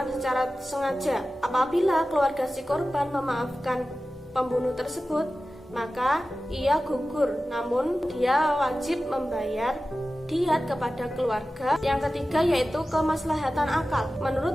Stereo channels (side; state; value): both; normal; correlation 0.95